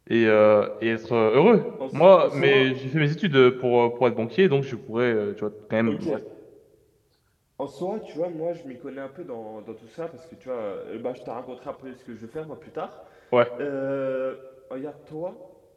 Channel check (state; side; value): identical; both; correlation 1.00